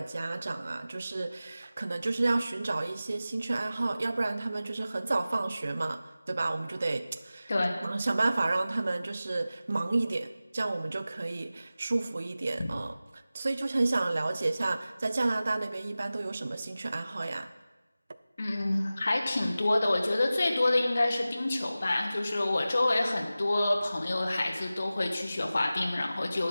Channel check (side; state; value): both; inverted; correlation -0.96